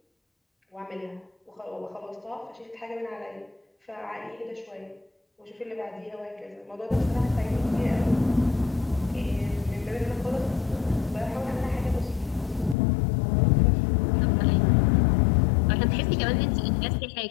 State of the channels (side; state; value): right; drops out; at 12.8 s